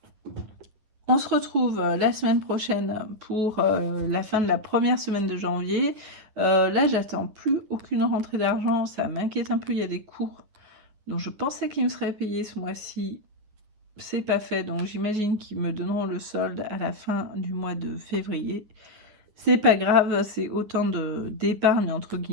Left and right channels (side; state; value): left; late; 9.3 ms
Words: On se retrouve la semaine prochaine pour la fin de la première semaine de janvier. Là, j'attends plus aucune rentrée d'argent. Ça m'inquiète un peu. Il y a des cours dont je pensais qu'ils me seraient payés ce mois-ci. C'est pas fait. Donc, j'imagine qu'ils me donneront le solde à la fin du mois de février. C'est pas grave. C'est autant d'épargne, entre